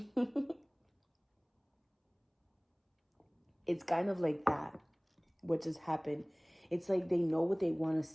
It's kind of like that, what just happened. It's like they know what they want to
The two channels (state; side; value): identical; both; correlation 1.00